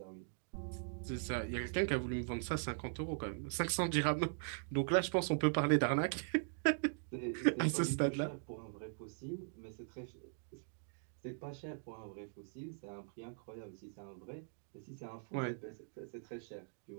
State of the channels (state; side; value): silent; left; digital silence